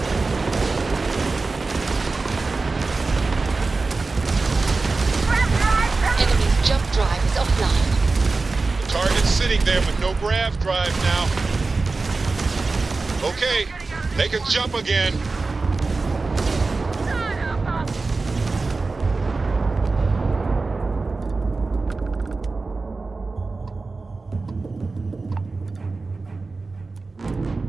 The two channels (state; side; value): quieter; left; 3.8 dB